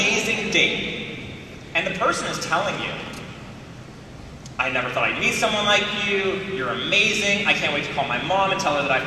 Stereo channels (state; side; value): identical; both; correlation 1.00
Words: date and the person is telling you, I never thought I'd meet someone like you, you're amazing, I can't wait to call my mom and tell her that I